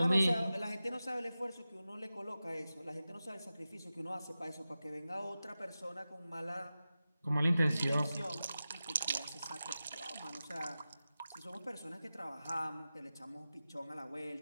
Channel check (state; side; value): inverted; both; correlation -0.94